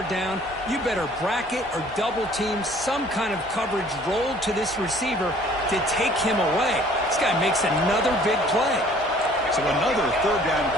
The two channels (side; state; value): both; normal; correlation 0.55